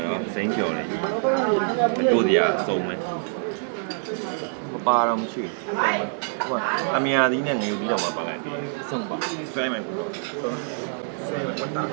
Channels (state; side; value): silent; left; digital silence